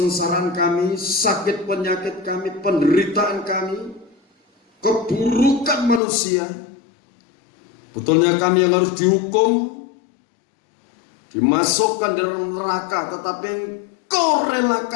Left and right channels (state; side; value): drops out; right; at 6.0 s